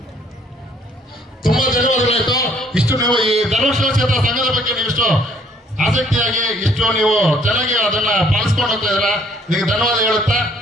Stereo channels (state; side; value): normal; both; correlation 0.62